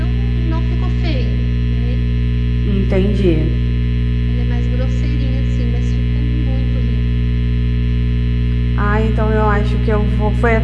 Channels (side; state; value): both; identical; correlation 1.00